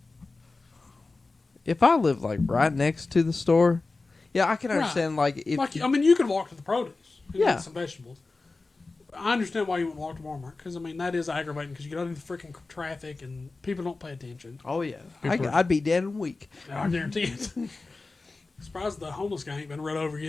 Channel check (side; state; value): right; quieter; 3.6 dB